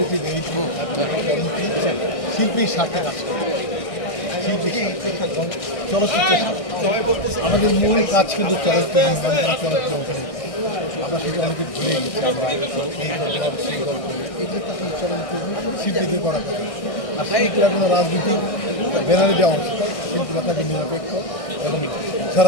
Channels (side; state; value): right; late; 1.6 ms